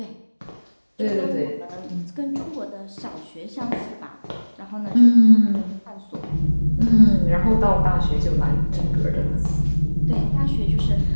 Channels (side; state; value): both; inverted; correlation -1.00